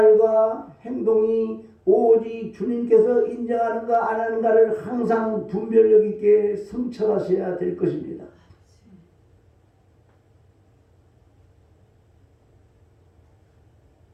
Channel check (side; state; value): both; identical; correlation 1.00